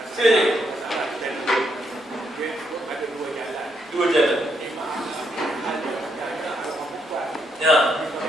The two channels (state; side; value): normal; both; correlation 0.77